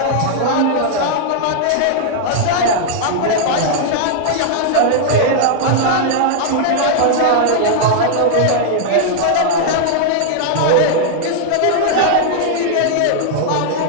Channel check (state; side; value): different; both; correlation -0.01